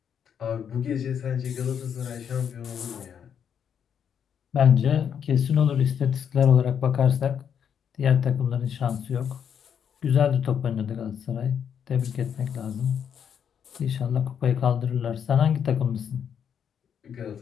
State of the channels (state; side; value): quieter; right; 8.1 dB